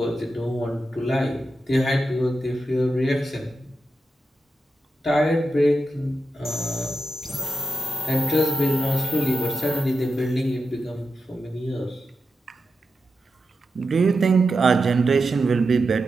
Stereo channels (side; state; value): both; normal; correlation 0.89